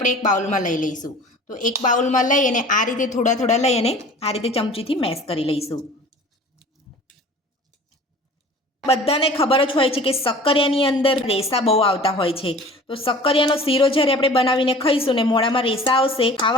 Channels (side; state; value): both; normal; correlation 0.44